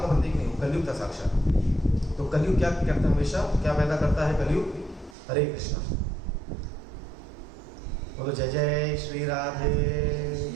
प्रतीक नहीं, कलयुग था साक्षात। तो कलयुग क्या करता है? हमेशा क्या पैदा करता है कलयुग? हरे कृष्णा। बोलो जय जय श्री राधे।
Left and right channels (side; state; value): left; drops out; at 5.2 s